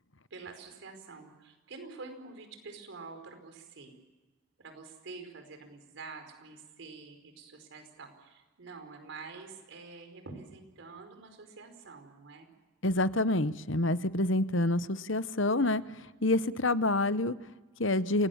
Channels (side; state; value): both; normal; correlation 0.20